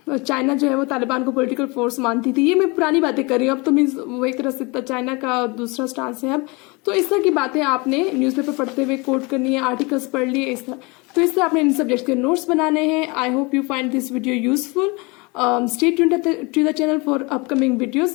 चाइना जो है वो तालिबान को पॉलिटिकल फोर्स मानती थी। ये मैं पुरानी बातें कर रही हूँ, अब तो मीन्स वो एक तरह से चाइना का दूसरा स्टांस है अब। तो इस तरह की बातें आपने न्यूज़पेपर पढ़ते हुए कोट करनी है, आर्टिकल्स पढ़ लिए इस तरह। तो इस तरह आपने इन सब्जेक्ट्स के नोट्स बनाने हैं। I hope you find this video useful. Stay tuned to the channel for upcoming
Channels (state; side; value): quieter; right; 27.1 dB